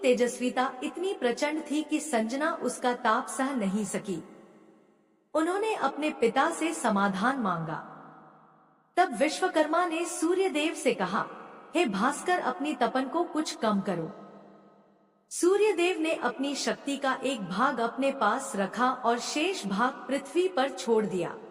इतनी प्रचंड थी कि संजना उसका ताप सह नहीं सकी। उन्होंने अपने पिता से समाधान मांगा। तब विश्वकर्मा ने सूर्यदेव से कहा, हे भास्कर, अपनी तपन को कुछ कम करो। सूर्यदेव ने अपनी शक्ति का एक भाग अपने पास रखा और शेष भाग पृथ्वी पर छोड़ दिया।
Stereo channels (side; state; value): both; identical; correlation 1.00